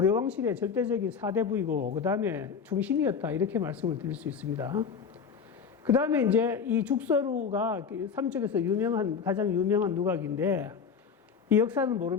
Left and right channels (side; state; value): right; quieter; 6.2 dB